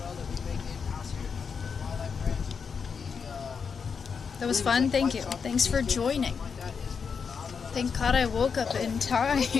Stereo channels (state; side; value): quieter; right; 6.0 dB